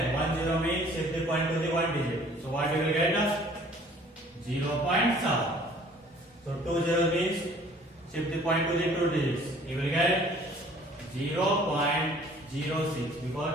1 0 means shift the point to the 1 digit. So what you will get? 0.7. So 2 0 means shift the point to the 2 digits. You will get 0.06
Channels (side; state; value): both; normal; correlation 0.54